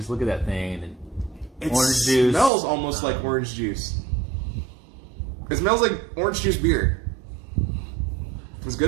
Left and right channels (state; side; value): drops out; left; at 2.5 s